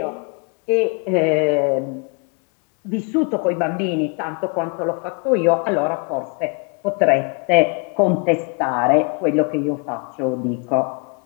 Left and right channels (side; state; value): right; quieter; 33.4 dB